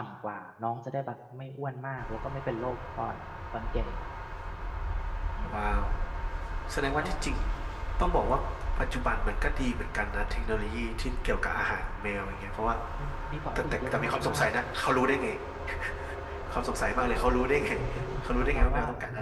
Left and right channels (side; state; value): both; identical; correlation 1.00